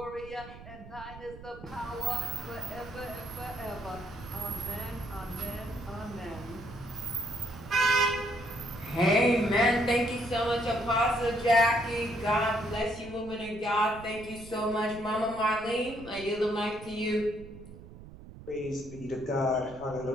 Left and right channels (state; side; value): noise; right; rumble, 16 dB below the sound